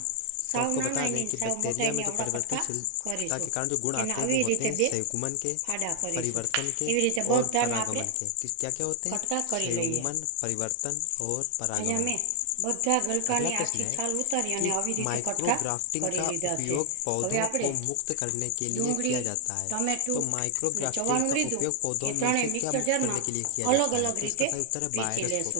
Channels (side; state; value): both; different; correlation 0.00